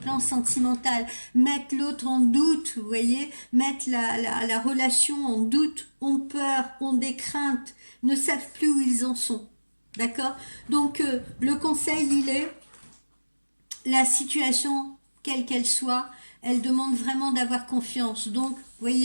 sentimental, mettent l'autre en doute, vous voyez, mettent la relation en doute, ont peur, ont des craintes, ne savent plus où ils en sont. D'accord? Donc, le conseil, il est la situation, quelle qu'elle soit, elle demande vraiment d'avoir confiance. Donc, vous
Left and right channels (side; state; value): both; inverted; correlation -1.00